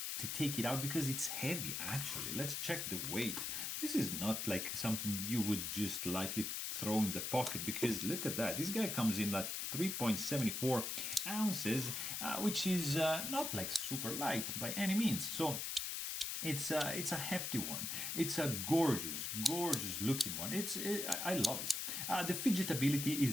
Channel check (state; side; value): noise; left; hiss, 2 dB below the sound